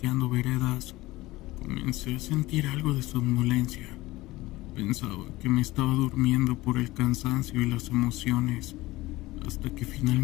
veredas, comencé a sentir algo de somnolencia. Pensaba que me estaba durmiendo por el cansancio y las emociones, hasta que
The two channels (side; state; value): right; quieter; 18.9 dB